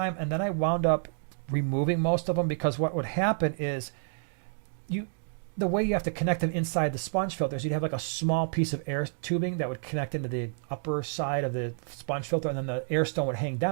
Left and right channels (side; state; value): left; silent; digital silence